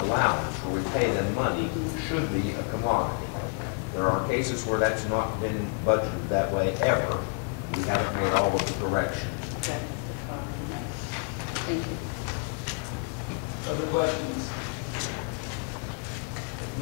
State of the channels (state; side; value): quieter; right; 35.6 dB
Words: allowance, where we pay them money, should be a commodity. There are cases where that's not been budgeted that way ever. We haven't made all of the corrections. Okay. Thank you. Other questions? If